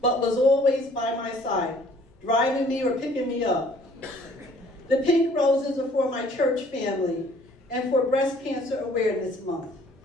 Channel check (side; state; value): both; normal; correlation 0.57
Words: but was always by my side, driving me or picking me up. The pink roses are for my church family and for Breast Cancer Awareness Month.